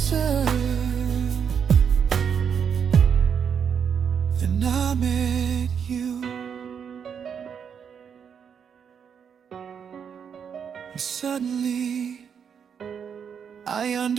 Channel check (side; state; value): left; quieter; 7.3 dB